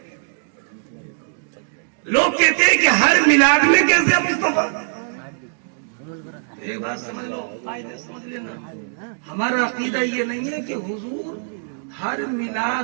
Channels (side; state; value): left; silent; digital silence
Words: لوگ کہتے ہیں کہ ہر میلاد میں کیسے مصطفیٰ، ایک بات سمجھ لو، قاعدے سمجھ لینا، ہمارا عقیدہ یہ نہیں ہے کہ حضور ہر